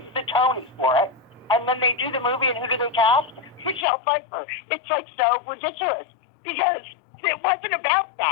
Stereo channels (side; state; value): right; drops out; at 3.9 s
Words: the Tony for it. And then they do the movie, and who do they cast? Michelle Pfeiffer. It's like so ridiculous because it wasn't about